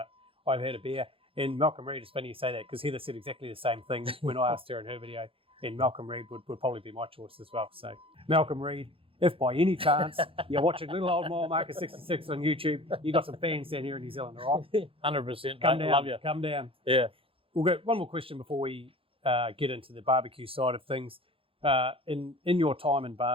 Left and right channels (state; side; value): late; left; 0.27 ms